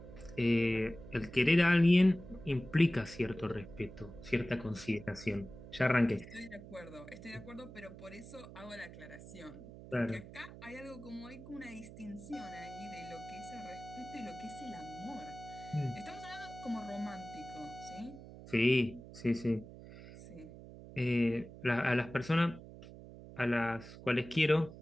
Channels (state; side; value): noise; right; hum, 15 dB below the sound